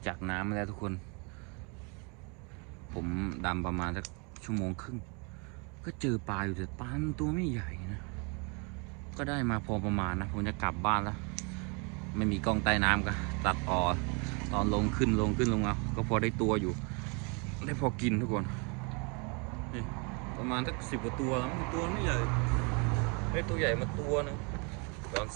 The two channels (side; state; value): left; quieter; 33.3 dB